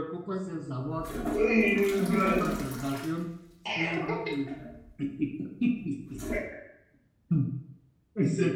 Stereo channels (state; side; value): identical; both; correlation 1.00